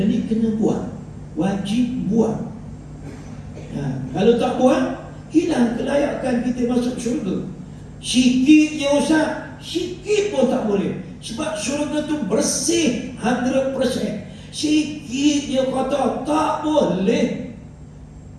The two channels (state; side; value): identical; both; correlation 1.00